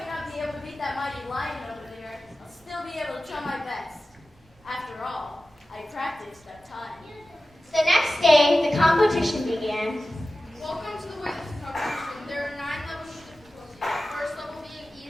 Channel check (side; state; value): both; normal; correlation 0.95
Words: not be able to beat that mighty lion over there, I'll still be able to try my best. After all, I practiced that time. The next day, the competition began. Welcome to the weightlifting competition. There are 9 levels of difficulty. The first level being